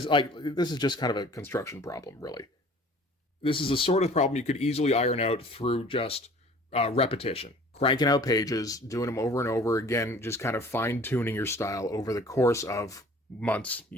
like this is just kind of a construction problem, really. This is a sort of problem you could easily iron out through just repetition. Cranking out pages, doing them over and over again, just kind of fine-tuning your style over the course of months,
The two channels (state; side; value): normal; both; correlation 0.49